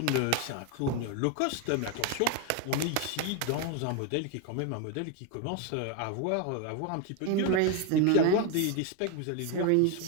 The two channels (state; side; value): different; both; correlation 0.01